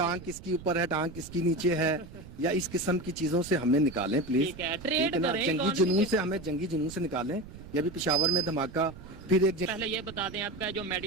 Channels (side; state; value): right; noise; rumble, 16 dB below the sound